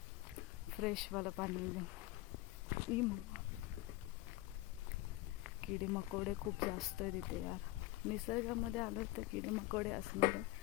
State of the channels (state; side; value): quieter; right; 18.2 dB